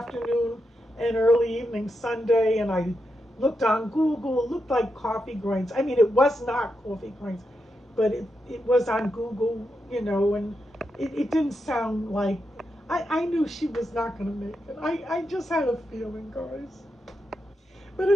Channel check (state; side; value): normal; both; correlation 0.85